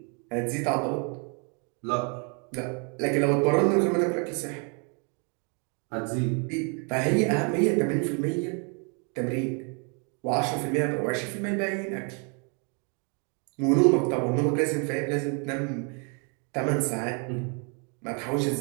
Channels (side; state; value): left; quieter; 37.0 dB